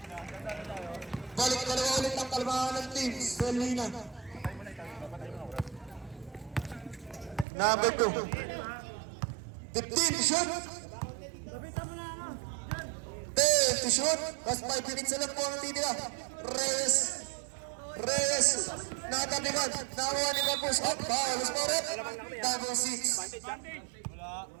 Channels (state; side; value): drops out; left; at 7.5 s